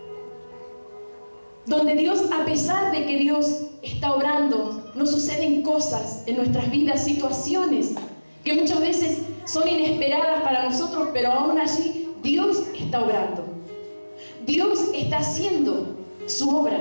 donde Dios, a pesar de que Dios está obrando, nos suceden cosas en nuestras vidas, situaciones que muchas veces son inesperadas para nosotros, pero aún allí Dios está obrando. Dios está haciendo su obra.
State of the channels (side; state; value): both; inverted; correlation -1.00